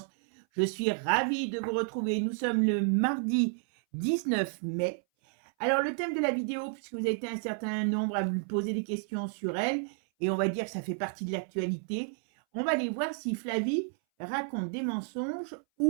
Je suis ravie de vous retrouver. Nous sommes le mardi 19 mai. Alors le thème de la vidéo, puisque vous avez été un certain nombre à me poser des questions sur elle, et on va dire que ça fait partie de l'actualité, on va aller voir si Flavie raconte des mensonges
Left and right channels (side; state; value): left; silent; 57 dB below the other